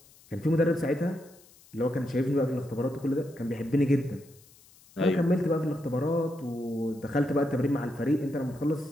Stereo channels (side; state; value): left; noise; hiss, 26 dB below the sound